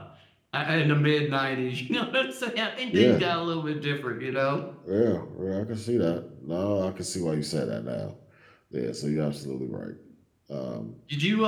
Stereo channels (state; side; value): identical; both; correlation 1.00